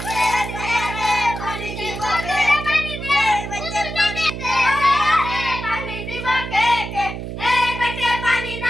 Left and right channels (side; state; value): right; noise; hum, 7 dB below the sound